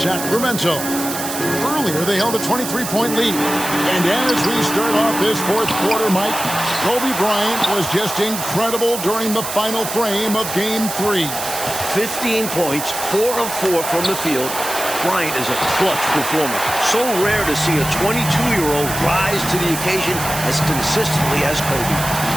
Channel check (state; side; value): noise; right; hiss, 6 dB below the sound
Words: Earlier, they held a 23-point lead. And as we start off this fourth quarter, Mike, Kobe Bryant was just incredible during the final frame of Game 3. 15 points, 4 of 4 from the field. Bryant is a clutch performer. So rare to see a 22-year-old rise to the occasion as consistently as Kobe.